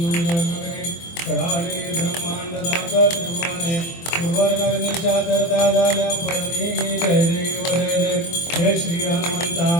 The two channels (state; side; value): late; right; 24 ms